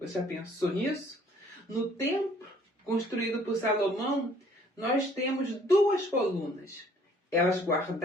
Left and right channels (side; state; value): both; normal; correlation 0.59